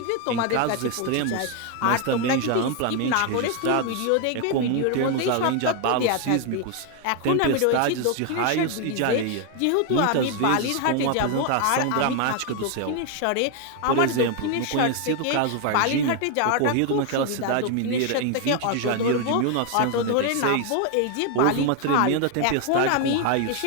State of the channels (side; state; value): both; different; correlation 0.00